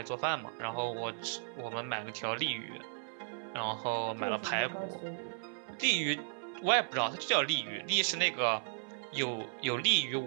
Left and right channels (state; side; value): silent; left; 54 dB below the other